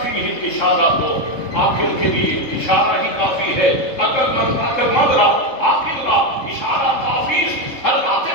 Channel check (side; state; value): right; late; 3.7 ms